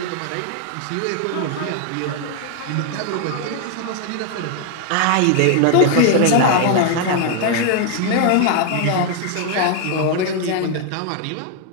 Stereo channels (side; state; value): both; different; correlation 0.00